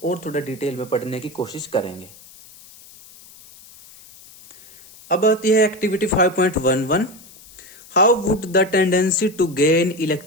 और थोड़ा डिटेल में पढ़ने की कोशिश करेंगे। अब आती है activity 5.11। How would the tendency to gain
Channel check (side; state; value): left; noise; hiss, 22 dB below the sound